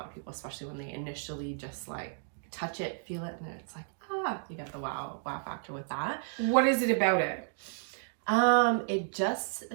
of people, especially when they initially just like touch it, feel it, and then it's like, you get the wow factor with that. What is it about it? It just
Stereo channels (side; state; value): left; silent; digital silence